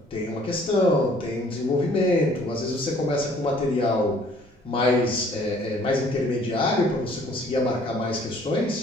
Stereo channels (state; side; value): normal; both; correlation 0.57